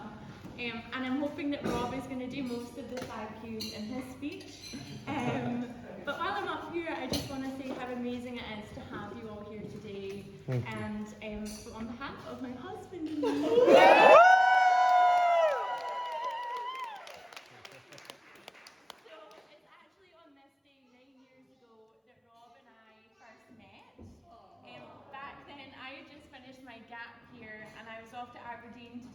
and I'm hoping that Rob is going to do most of the thank yous in his speech. But while I'm up here, I just want to say how amazing it is to have you all here today. And on behalf of my husband and me, my gap here and I was off to Aberdeen to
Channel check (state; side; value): identical; both; correlation 1.00